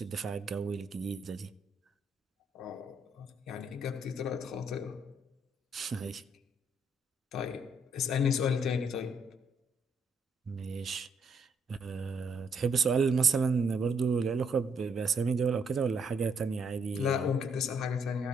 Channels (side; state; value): both; normal; correlation 0.71